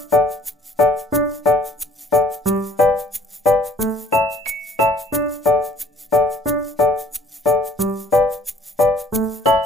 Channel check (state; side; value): normal; both; correlation 0.58